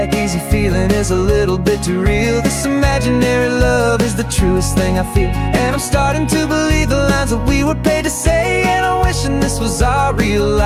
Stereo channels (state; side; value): identical; both; correlation 1.00